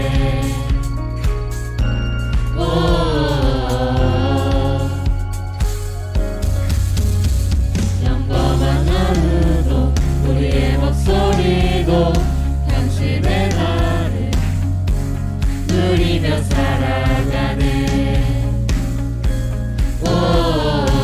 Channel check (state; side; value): identical; both; correlation 1.00